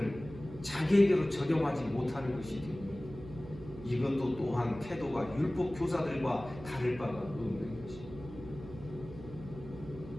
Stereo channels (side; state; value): right; noise; hum, 14 dB below the sound